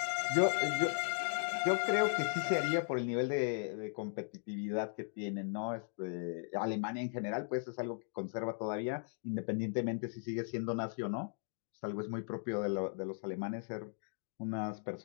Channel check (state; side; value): silent; right; 53 dB below the other